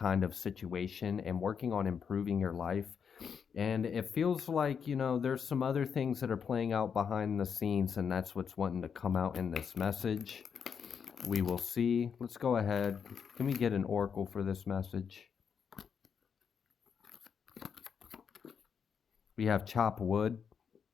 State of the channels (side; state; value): right; quieter; 6.9 dB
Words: of situation and working on improving your life. And it feels like, there's some other things that are playing out behind the scenes, and that's what's wanting to come out in this message. We will see. Let's go ahead. Can we get an oracle for this message? We have chop wood.